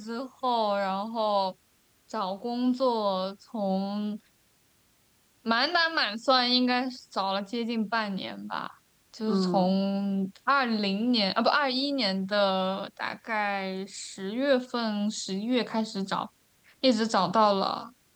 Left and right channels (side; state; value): both; identical; correlation 1.00